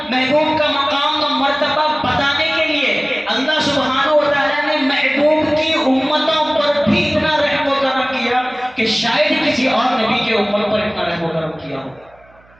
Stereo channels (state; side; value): noise; right; hum, 30 dB below the sound